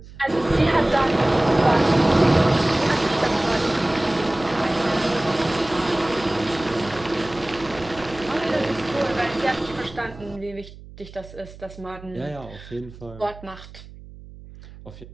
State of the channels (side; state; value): right; noise; hum, 18 dB below the sound